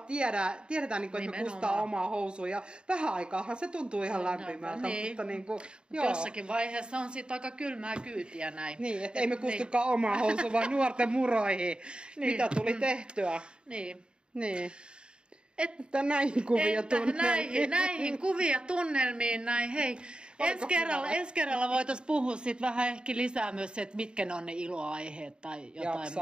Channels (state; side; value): late; left; 0.051 ms